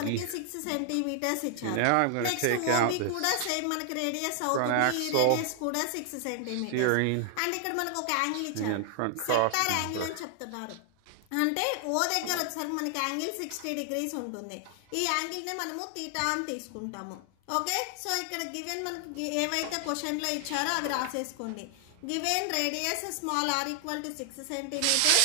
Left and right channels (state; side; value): different; both; correlation 0.00